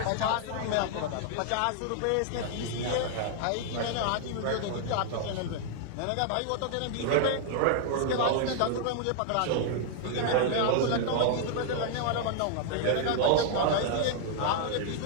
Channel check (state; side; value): different; both; correlation -0.01